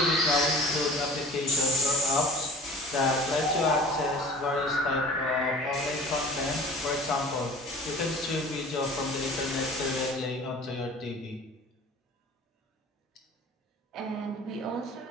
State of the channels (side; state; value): both; normal; correlation 0.44